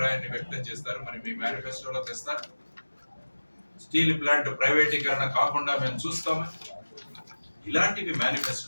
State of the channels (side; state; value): both; inverted; correlation -1.00